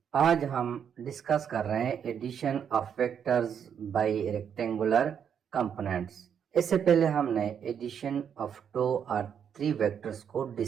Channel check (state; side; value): quieter; left; 8.0 dB